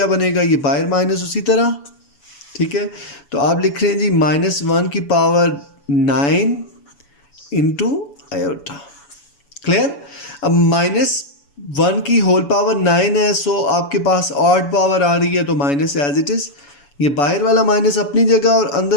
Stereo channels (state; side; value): late; right; 7.0 ms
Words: बनेगा, ये बाहर माइनस उसी तरह। ठीक है, तो आप लिख रहे हैं जी -1 की पावर 9 इंटू आयोटा। क्लियर, अब -1 की होल पावर 9 है, सो आपके पास ऑड पावर आ रही है तो माइनस एज इट इज़, ये बाहर वाला माइनस अपनी जगह और